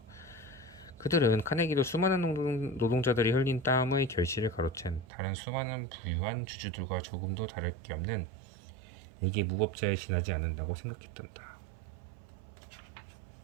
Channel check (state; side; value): drops out; left; at 5.1 s